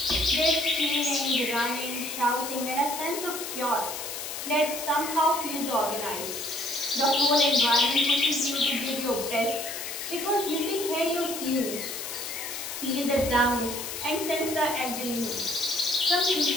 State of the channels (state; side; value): noise; left; hiss, 7 dB below the sound